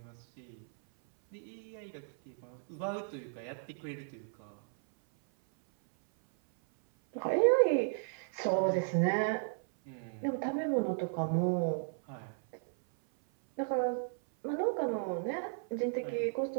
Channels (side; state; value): left; silent; 55 dB below the other